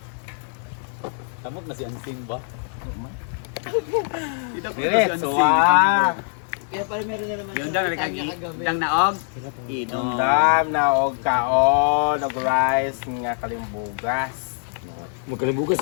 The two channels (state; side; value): silent; right; digital silence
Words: Tamot na si Ansing ba? Diretso ah. Kaya pala meron na naman Yung dang nagkagidang naog. Inom. Dam na og kaon, og rice nga kalimbugas. Magkalimbugas